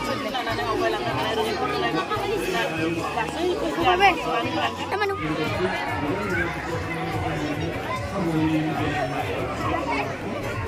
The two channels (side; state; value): both; identical; correlation 1.00